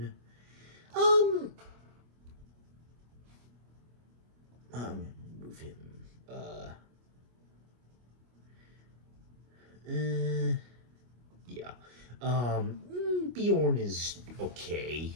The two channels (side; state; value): left; late; 25 ms